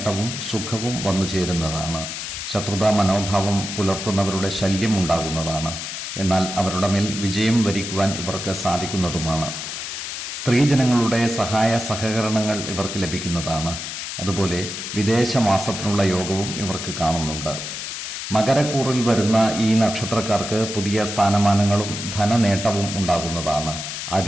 സുഖവും വന്നു ചേരുന്നതാണ്. ശത്രുതാ മനോഭാവം പുലർത്തുന്നവരുടെ ശല്യം ഉണ്ടാകുന്നതാണ്. എന്നാൽ അവരുടെ മേൽ വിജയം വരിക്കുവാൻ ഇവർക്ക് സാധിക്കുന്നതുമാണ്. സ്ത്രീജനങ്ങളുടെ സഹായ സഹകരണങ്ങൾ ഇവർക്ക് ലഭിക്കുന്നതാണ്. അതുപോലെ വിദേശവാസത്തിനുള്ള യോഗവും ഇവർക്ക് കാണുന്നുണ്ട്. മകരക്കൂറിൽ വരുന്ന ഈ നക്ഷത്രക്കാർക്ക് പുതിയ സ്ഥാനമാനങ്ങളും ധനനേട്ടവും ഉണ്ടാകുന്നതാണ്.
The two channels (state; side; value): noise; left; hiss, 6 dB below the sound